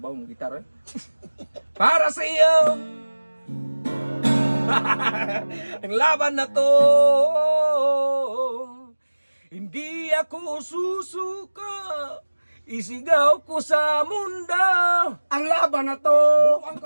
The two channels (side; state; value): both; inverted; correlation -1.00